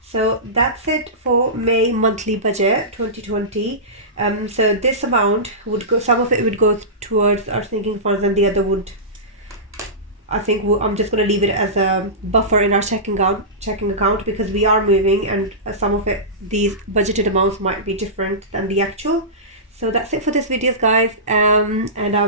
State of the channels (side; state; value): both; normal; correlation -0.19